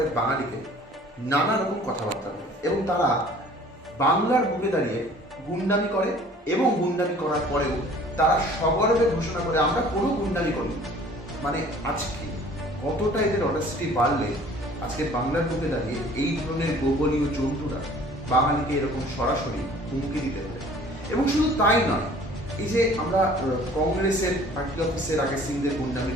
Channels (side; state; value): both; normal; correlation 0.51